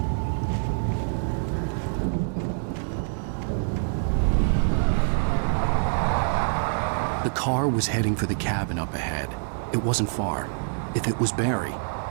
The car was heading for the cabin up ahead. It wasn't far. If it was Barry,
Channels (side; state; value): left; silent; digital silence